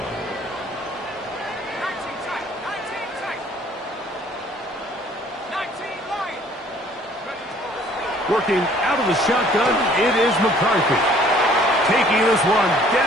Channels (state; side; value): normal; both; correlation 0.57